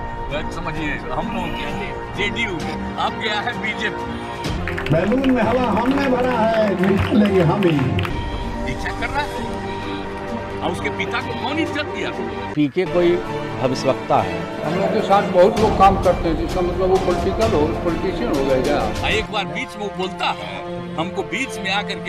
समझिए हम लोग जेडीयू, अब गया है बीजेपी। बैलून में हवा हमने भरा है, निकालेंगे हम ही। दीक्षा कर रहा है और उसके पिता को कौन इज्जत दिया? पीके कोई भविष्यवक्ता है। हम लोग के साथ बहुत लोग काम करते हैं, जिसका मतलब वो पॉलिटिशियन हो गए क्या? एक बार बीच में वो बोलता है, हमको बीच में आकर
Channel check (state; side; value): identical; both; correlation 1.00